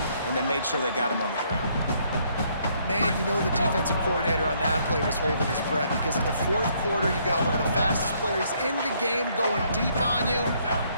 and they made sure they got him on the ground. Man, you know the defensive coordinator on that play was holding his breath because in the 4th quarter, you got one of the fastest players in the game going deep on you.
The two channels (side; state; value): both; inverted; correlation -0.68